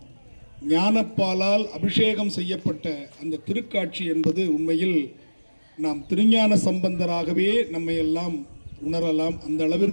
ஞானப்பாலால் அபிஷேகம் செய்யப்பட்ட அந்த திருக்காட்சி என்பது உண்மையில் நாம் திருஞான சம்பந்தராகவே நம்மை எல்லாம் உணரலாம். அந்த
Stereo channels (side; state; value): both; inverted; correlation -1.00